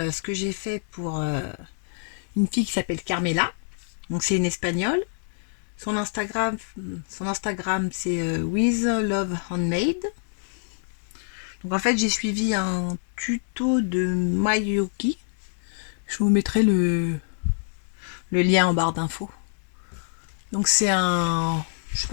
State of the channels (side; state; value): right; silent; digital silence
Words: ce que j'ai fait pour une fille qui s'appelle Carmela. Donc c'est une espagnole. Son Instagram, son Instagram c'est With Love Handmade. Donc en fait j'ai suivi un tuto de Mayuki. Je vous mettrai le lien en barre d'infos. Donc c'est un, je sais